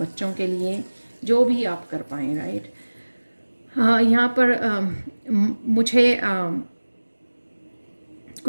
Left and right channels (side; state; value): both; inverted; correlation -1.00